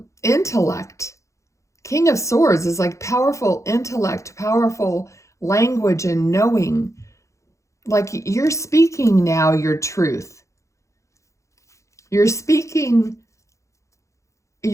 intellect. King of Swords is like powerful intellect, powerful language and knowing. Like, you're speaking now your truth. You're speaking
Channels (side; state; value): right; late; 0.15 ms